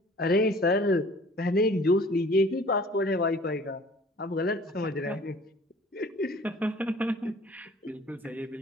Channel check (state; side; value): normal; both; correlation 0.51